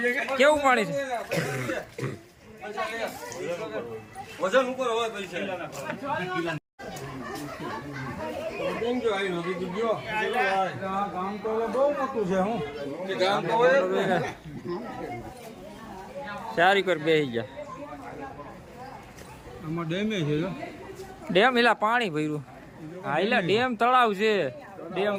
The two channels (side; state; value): both; identical; correlation 1.00